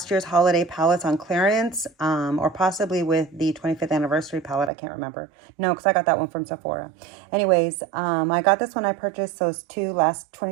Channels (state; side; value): drops out; left; at 4.7 s